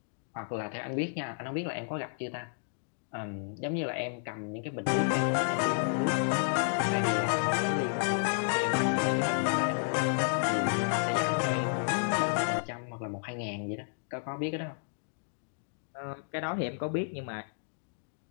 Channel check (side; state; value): right; silent; digital silence